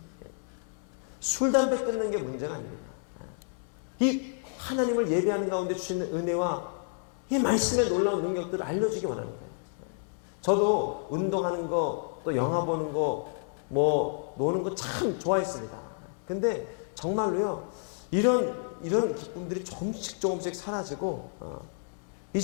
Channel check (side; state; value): right; silent; 58 dB below the other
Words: 술, 담배 끊는 게 문제가 아닙니다. 이 하나님을 예배하는 가운데 주시는 은혜와 이 말씀의 놀라운 능력들을 알려주기 원하는 거예요. 저도 운동하는 거, 또 영화 보는 거, 뭐 노는 거 참 좋아했습니다. 근데 정말로요, 이런 기쁨들이 조금씩 사라지고